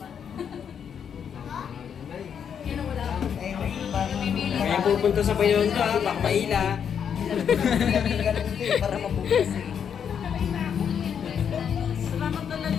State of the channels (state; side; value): quieter; right; 7.8 dB